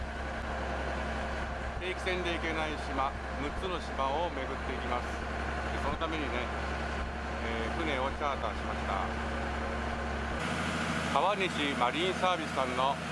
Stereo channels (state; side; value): identical; both; correlation 1.00